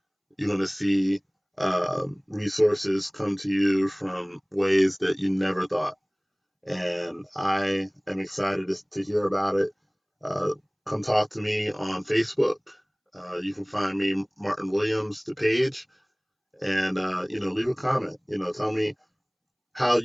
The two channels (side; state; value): both; identical; correlation 1.00